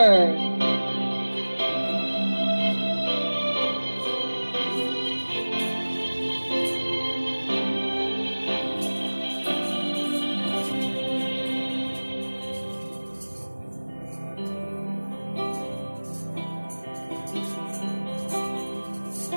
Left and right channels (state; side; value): inverted; both; correlation -1.00